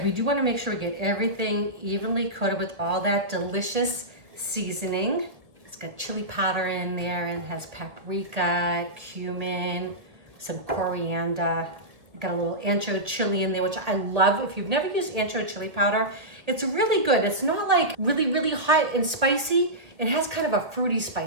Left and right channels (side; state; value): left; late; 1.8 ms